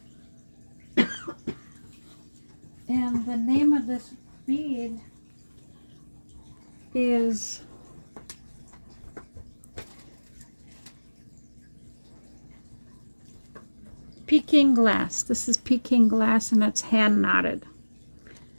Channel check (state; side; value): inverted; both; correlation -1.00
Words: And the name of this bead is Peking glass. This is Peking glass, and it's hand knotted.